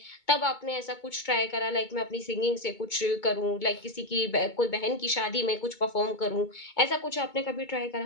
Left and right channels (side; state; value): right; late; 2.2 ms